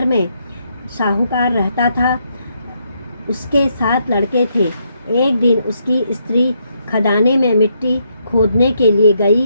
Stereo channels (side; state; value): both; inverted; correlation -0.76